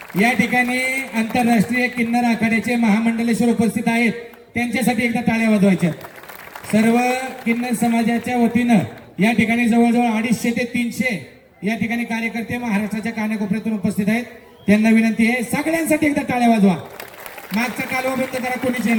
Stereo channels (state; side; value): identical; both; correlation 1.00